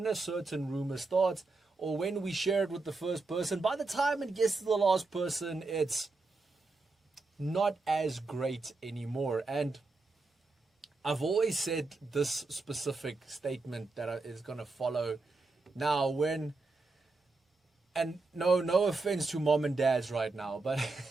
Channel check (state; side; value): quieter; left; 3.6 dB